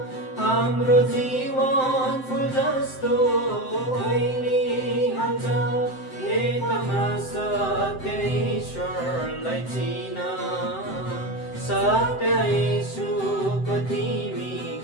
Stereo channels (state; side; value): late; right; 7.7 ms